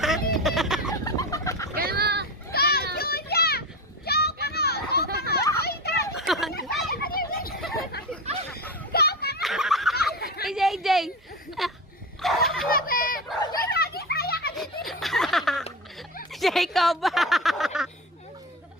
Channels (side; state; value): both; normal; correlation 0.24